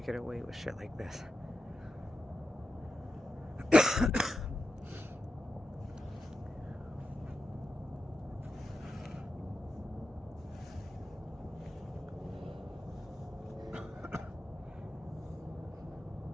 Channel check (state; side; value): normal; both; correlation 0.89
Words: get away with shit like this.